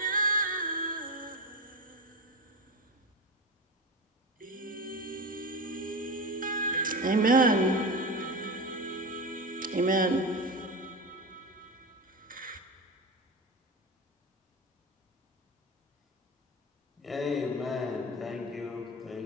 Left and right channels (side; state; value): both; normal; correlation 0.22